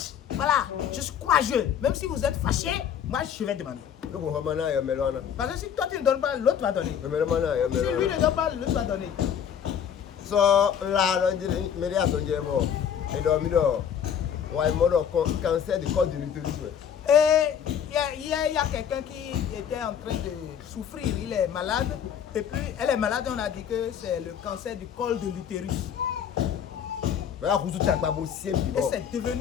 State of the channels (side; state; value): right; quieter; 8.5 dB